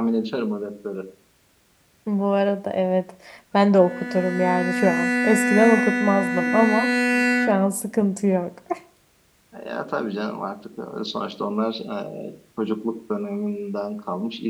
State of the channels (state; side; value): identical; both; correlation 1.00